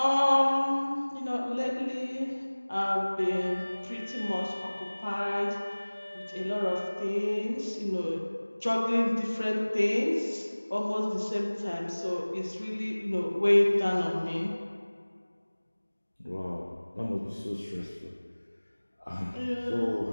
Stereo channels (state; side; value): inverted; both; correlation -1.00